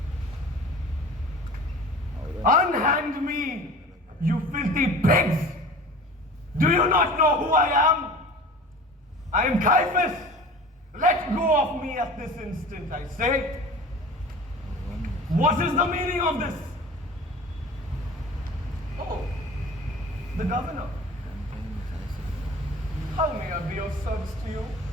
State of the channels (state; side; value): normal; both; correlation 0.40